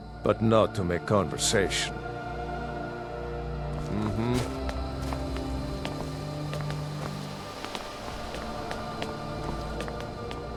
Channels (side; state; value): both; identical; correlation 1.00